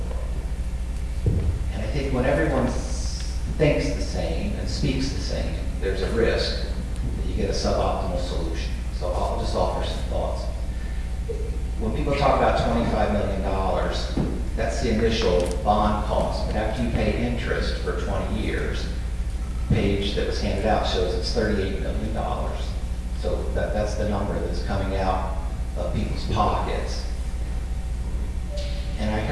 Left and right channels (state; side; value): identical; both; correlation 1.00